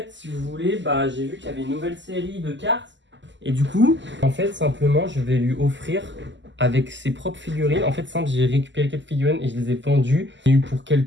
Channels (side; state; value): left; late; 0.54 ms